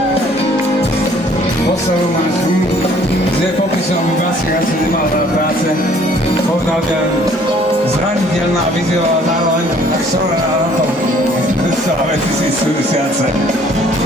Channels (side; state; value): both; normal; correlation 0.58